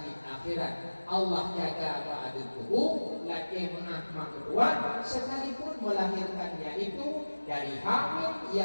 akhirat Allah jaga apa adil kubur laki maaf mak kedua sekalipun melahirkannya itu dari hamil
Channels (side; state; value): both; inverted; correlation -1.00